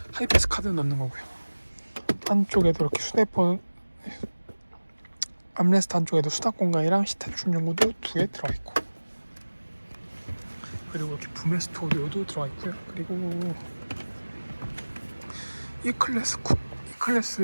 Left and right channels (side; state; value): both; inverted; correlation -1.00